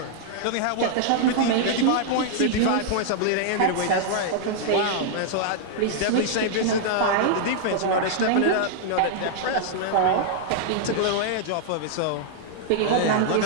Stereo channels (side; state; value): both; different; correlation -0.01